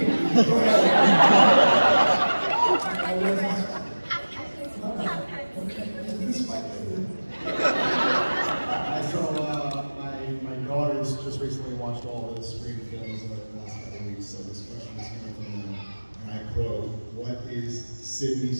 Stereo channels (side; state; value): both; inverted; correlation -1.00